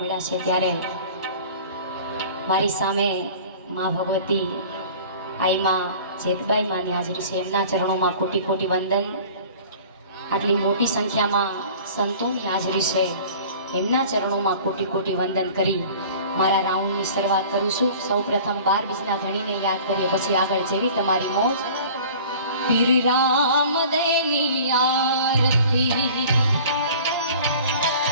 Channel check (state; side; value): inverted; both; correlation -0.45